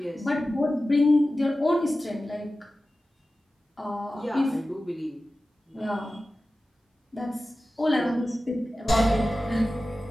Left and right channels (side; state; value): both; normal; correlation 0.95